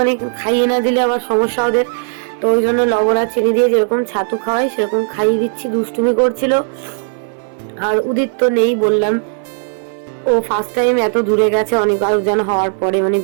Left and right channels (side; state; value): left; silent; 65 dB below the other